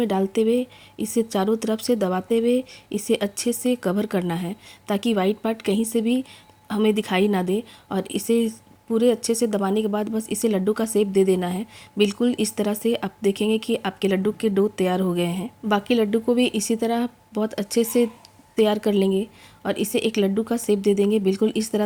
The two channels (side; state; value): both; identical; correlation 1.00